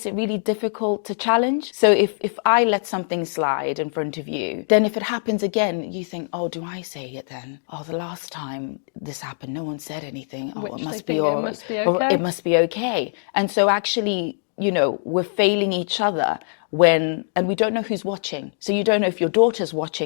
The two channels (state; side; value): silent; right; digital silence